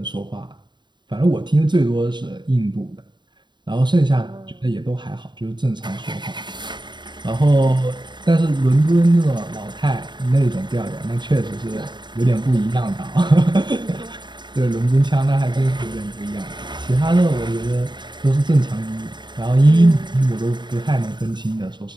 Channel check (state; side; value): late; left; 0.22 ms